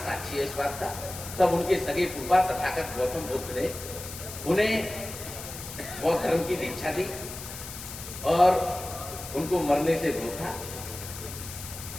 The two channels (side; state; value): left; noise; hiss, 11 dB below the sound